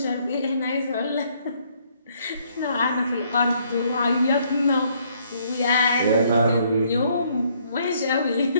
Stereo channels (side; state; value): both; inverted; correlation -0.67